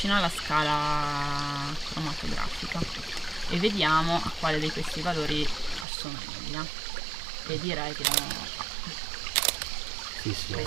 alla scala cromatografica e vediamo a quale di questi valori assomiglia, e direi che abbiamo Sì, sì.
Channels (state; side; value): drops out; left; at 5.9 s